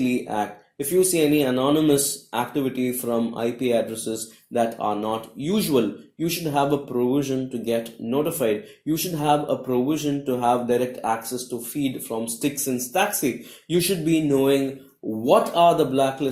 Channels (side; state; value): both; identical; correlation 1.00